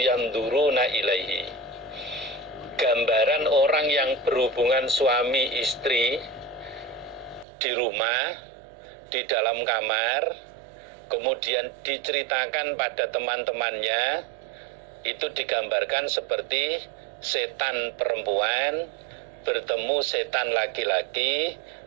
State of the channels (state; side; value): drops out; left; at 7.5 s